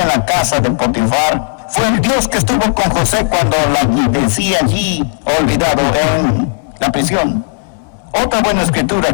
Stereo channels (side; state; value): right; silent; 60 dB below the other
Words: en la casa de Potifar, fue el Dios que estuvo con José cuando la decía allí, olvidado, en la prisión. Otra buena